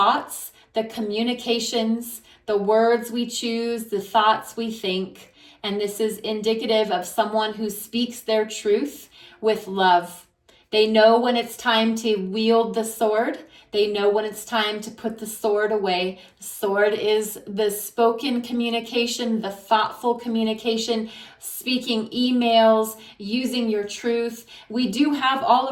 the communications, the words we choose, the thoughts we think. And this is indicative of someone who speaks their truth with love. They know when it's time to wield the sword. They know when it's time to put the sword away. The sword is the spoken communication, the thoughtful communication, speaking emails, using your truth. We do have all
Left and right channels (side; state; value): both; identical; correlation 1.00